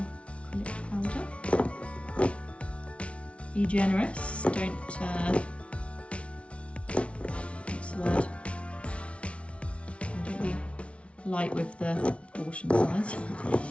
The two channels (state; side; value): late; right; 0.061 ms